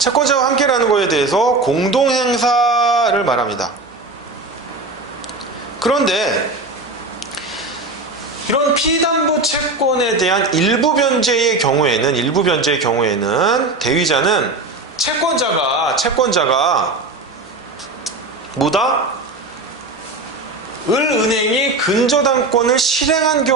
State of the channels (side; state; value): left; quieter; 3.2 dB